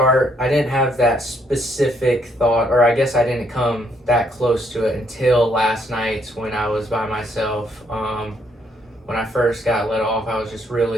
I didn't have that specific thought, or I guess I didn't come that close to it until last night when I was by myself. When I first got let off, I was just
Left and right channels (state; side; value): normal; both; correlation 0.71